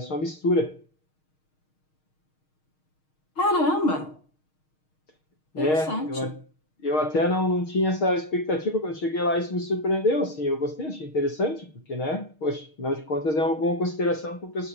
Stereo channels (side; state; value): right; late; 6.4 ms